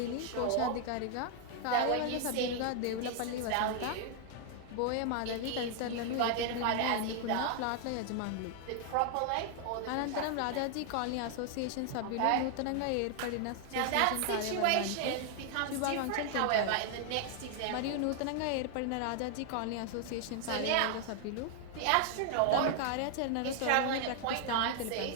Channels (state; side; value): different; both; correlation 0.00